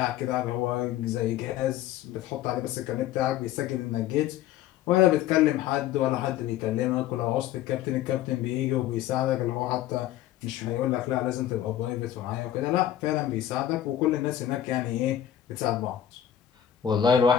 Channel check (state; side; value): quieter; right; 11.2 dB